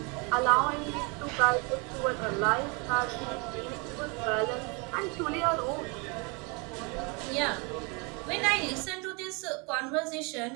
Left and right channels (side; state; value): left; quieter; 31.2 dB